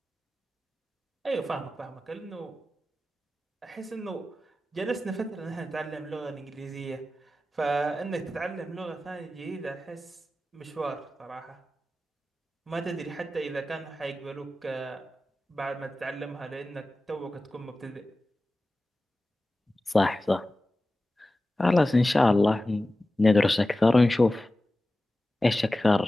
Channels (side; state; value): both; normal; correlation 0.95